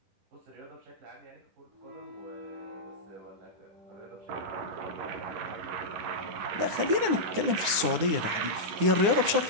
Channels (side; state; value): left; late; 9.9 ms